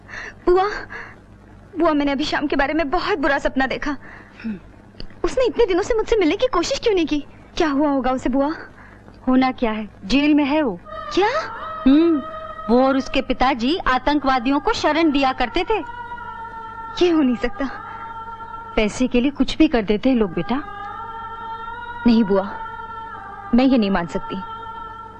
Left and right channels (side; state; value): both; identical; correlation 1.00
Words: बुआ, बुआ, मैंने अभी शाम के बारे में बहुत बुरा सपना देखा। उसने इतने दिनों से मुझसे मिलने की कोशिश क्यों नहीं की? क्या हुआ होगा उसे बुआ? होना क्या है, जेल में है वो। क्या? वो और उसके पिताजी आतंकवादियों को शरण दिया करते थे। ये हो नहीं सकता। पैसे के लिए कुछ भी कर देते हैं लोग बेटा। नहीं बुआ, मैं ये नहीं मान सकती।